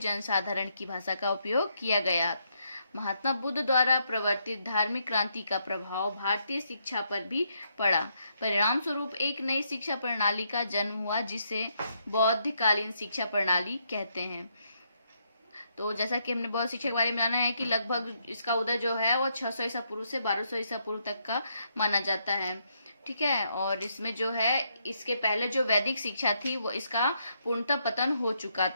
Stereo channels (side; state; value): both; inverted; correlation -0.76